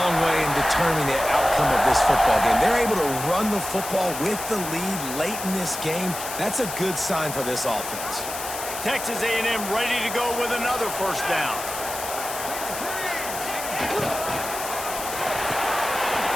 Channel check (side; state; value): left; noise; hiss, 8 dB below the sound